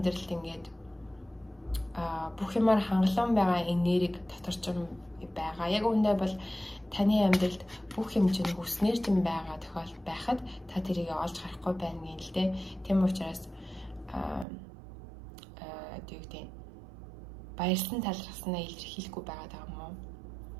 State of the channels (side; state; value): left; drops out; at 14.5 s